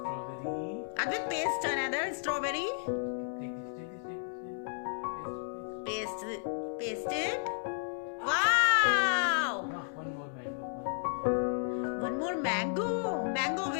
Advait, paste another strawberry. Take this. Paste it. Wow! Now one more mango. One more mango. Mango,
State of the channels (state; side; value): silent; right; 56 dB below the other